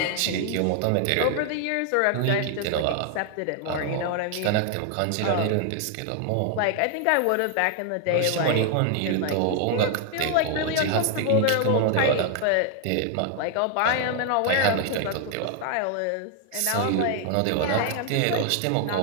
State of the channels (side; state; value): both; different; correlation 0.00